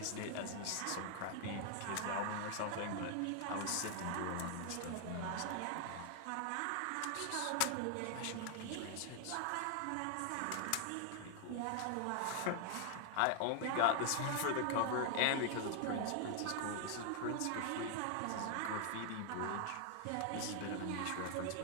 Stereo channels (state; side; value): different; both; correlation 0.00